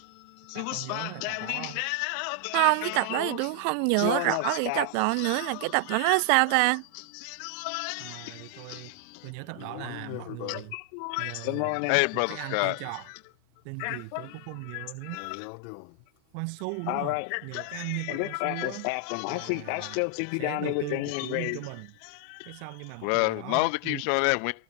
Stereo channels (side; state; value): both; different; correlation 0.00